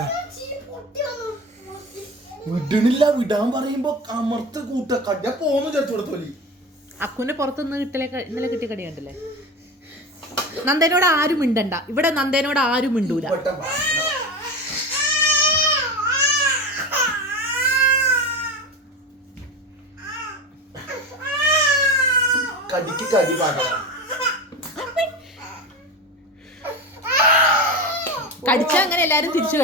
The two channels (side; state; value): both; normal; correlation 0.25